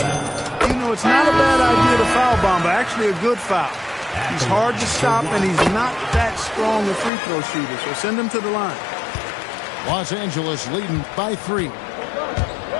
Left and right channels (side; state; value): right; drops out; at 7.1 s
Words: You know, it's not a bad idea to foul Bamba. Actually a good foul. He's hard to stop, and he's not that strong a free throw shooter. So send him to the line. Los Angeles leading by 3.